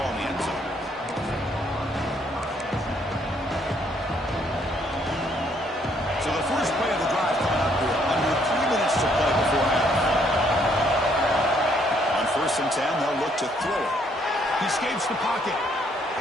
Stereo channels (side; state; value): both; normal; correlation 0.68